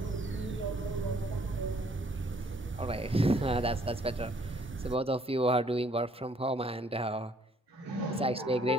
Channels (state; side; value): normal; both; correlation 0.63